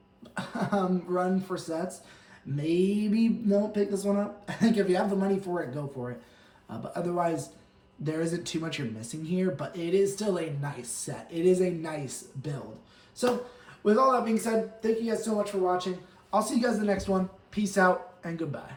run for sets, maybe don't pick this one up. I think if you have the money for it, go for it. But otherwise, there isn't too much you're missing here, but it is still a nice set. It is a nice build. So, with all that being said, thank you guys so much for watching. I'll see you guys in the next one. Peace out and goodbye.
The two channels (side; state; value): both; identical; correlation 1.00